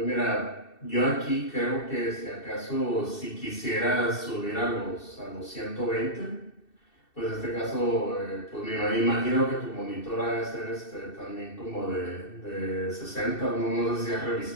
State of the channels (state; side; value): late; right; 2.7 ms